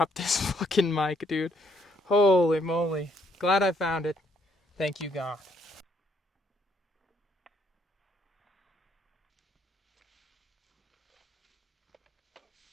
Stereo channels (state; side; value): normal; both; correlation 0.70